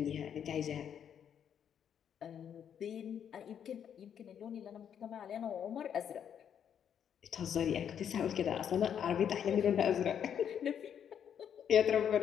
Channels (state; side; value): quieter; right; 8.6 dB